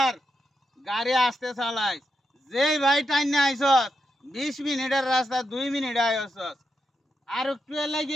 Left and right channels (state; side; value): normal; both; correlation 0.85